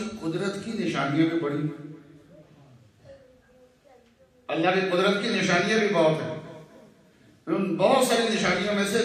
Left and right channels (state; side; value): identical; both; correlation 1.00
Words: قدرت کی نشانیاں بھی بڑی، اللہ کی قدرت کی نشانیاں بھی بہت ہیں۔ ان بہت ساری نشانیوں میں سے